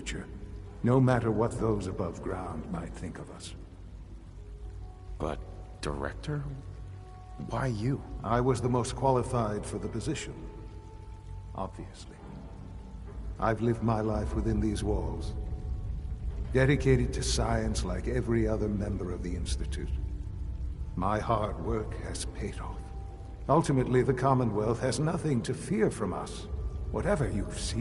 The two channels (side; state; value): both; identical; correlation 1.00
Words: no matter what those above ground might think of us. But, Director? Why you? I was the most qualified for the position, obviously. I've lived my life within these walls, dedicated to science like every other member of the Institute. My hard work has paid off. Ultimately, the Commonwealth has nothing to fear from us. Whatever you've